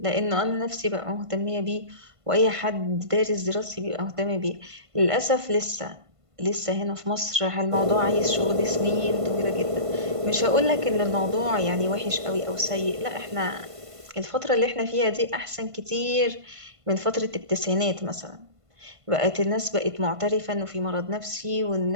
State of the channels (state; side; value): late; left; 1.5 ms